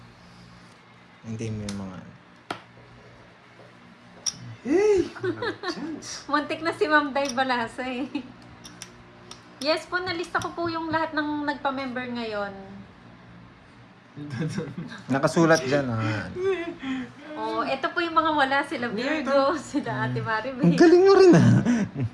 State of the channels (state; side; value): identical; both; correlation 1.00